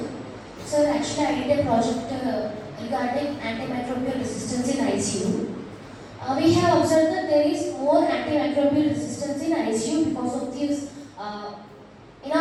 Sir, actually I did a project regarding antimicrobial resistance in ICU. We have observed that there is more antimicrobial resistance in ICU because of this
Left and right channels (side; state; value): both; identical; correlation 1.00